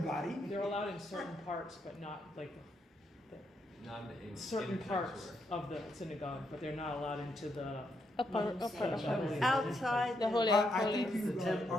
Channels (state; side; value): normal; both; correlation 0.79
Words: They're allowed in certain parts, but not like Not in certain parts of the synagogue, but they're not allowed into the Upper. Outside The holy I of think holies. you